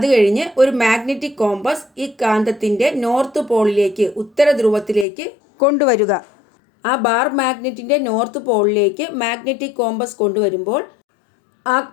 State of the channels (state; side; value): drops out; right; at 5.1 s